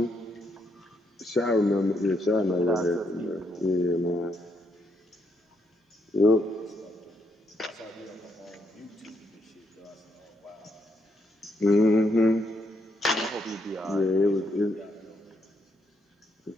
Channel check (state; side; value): normal; both; correlation 0.76